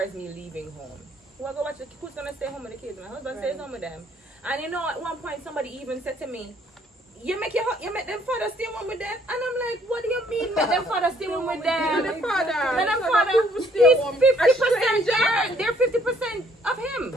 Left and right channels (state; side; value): normal; both; correlation 0.63